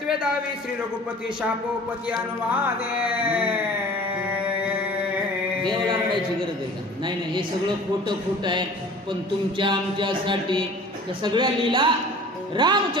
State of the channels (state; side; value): normal; both; correlation 0.45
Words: दावी श्री रघुपती शापोपती अनुवादे. देवाला रडायची गरज आहे का? नाही नाही, हे सगळं खोटं आहे, पण तुमच्या आमच्यासाठी त्या सगळ्या लीला